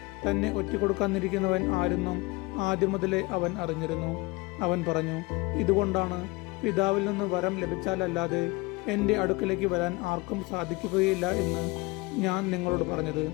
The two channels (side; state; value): right; quieter; 24.1 dB